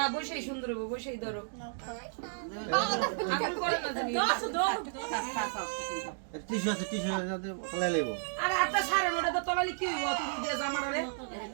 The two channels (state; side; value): silent; left; digital silence